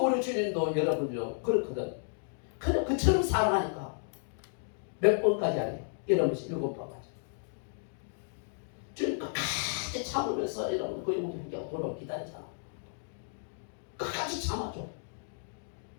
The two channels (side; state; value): right; silent; digital silence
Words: 주님도 여러분요 그렇거든. 그냥 그처럼 사랑하니까 몇 번까지 하래요. 이러면서 7번까지. 주님 끝까지 참으면서 이러면 그 영혼이 회개하고 돌아오고 기다리잖아. 끝까지 참아줘.